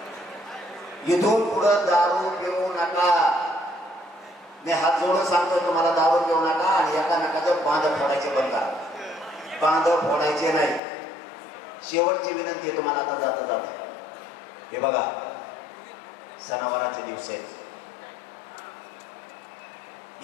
इथून पुढं दारू पिऊ नका. मी हात जोडून सांगतोय तुम्हाला, दारू पिऊ नका आणि एकामेकाचं बांध फोडायचे बंद करा. बांध फोडायचे नाही. शेवटची विनंती आहे तुम्हाला आता जाता जाता. हे बघा, सणावाराचे दिवस आहेत.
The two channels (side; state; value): right; drops out; at 10.8 s